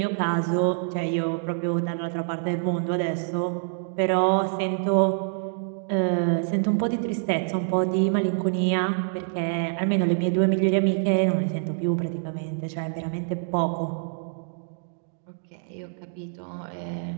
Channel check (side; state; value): left; silent; digital silence